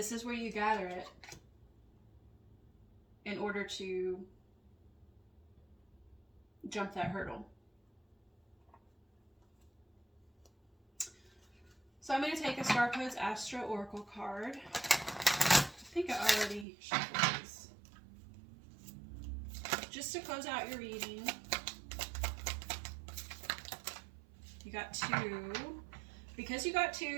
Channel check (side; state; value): left; drops out; at 16.7 s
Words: is where you gather it in order to jump that hurdle. So I'm going to take a Star Codes Astro Oracle card. I think I already shuffled these. Just to close out your reading, you got two. Because you got